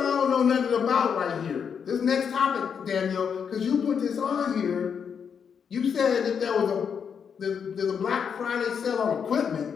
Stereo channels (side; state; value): right; quieter; 7.0 dB